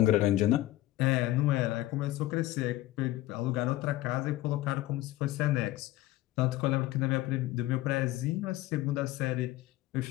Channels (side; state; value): right; quieter; 16.0 dB